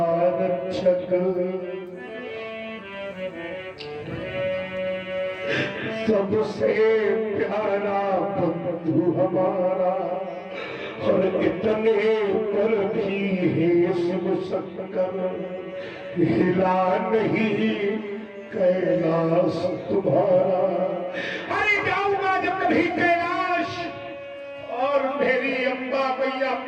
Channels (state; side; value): identical; both; correlation 1.00